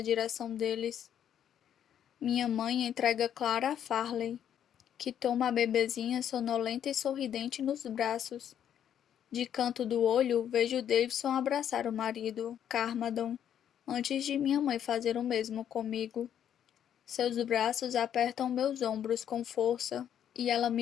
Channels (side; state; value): right; quieter; 9.6 dB